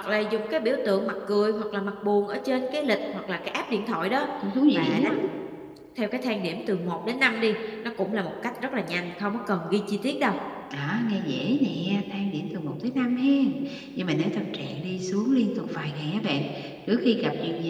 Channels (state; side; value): identical; both; correlation 1.00